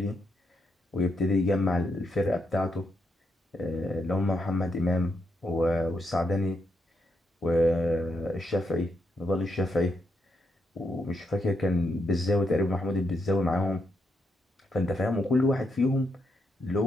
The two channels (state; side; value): normal; both; correlation 0.80